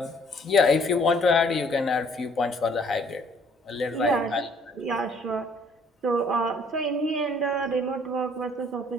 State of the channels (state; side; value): normal; both; correlation 0.61